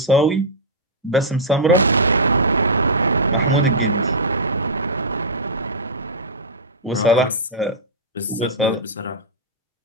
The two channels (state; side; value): normal; both; correlation -0.11